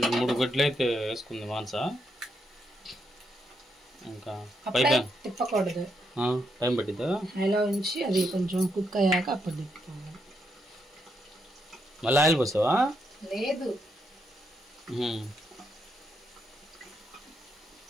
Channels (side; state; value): both; normal; correlation 0.79